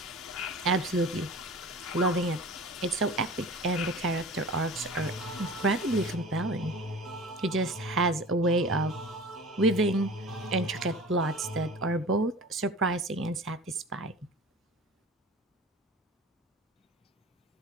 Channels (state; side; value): normal; both; correlation 0.39